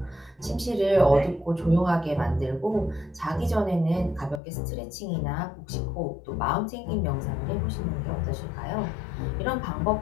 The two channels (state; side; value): drops out; right; at 4.4 s